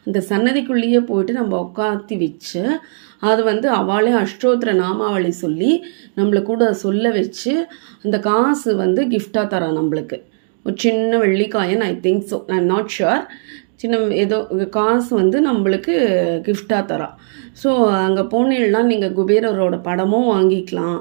அந்த சன்னதிக்குள்ளேயே போயிட்டு நம்ம உட்காத்தி வச்சு அது அவளே அஷ்டோத்திர நாமாவளி சொல்லி நம்மளை கூட சொல்ல வச்சு அந்த காசு கிஃப்டாக தரா நம்மளுக்கு. ஒரு சின்ன வெள்ளிக்காயன், I think so, I am not sure. சின்ன ஏதோ காசு நம்மளுக்கு கிஃப்டாக தரா. ஸோ அங்கே போனீங்கன்னா நீங்கள் குபேரரோட படமும் வாங்கிக்கலாம்.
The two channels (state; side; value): silent; left; digital silence